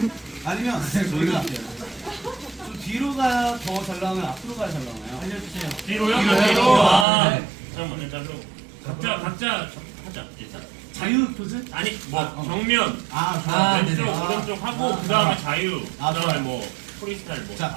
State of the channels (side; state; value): left; drops out; at 7.1 s